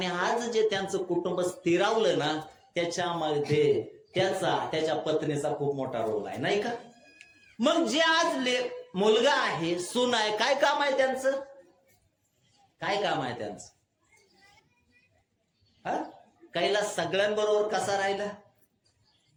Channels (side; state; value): both; identical; correlation 1.00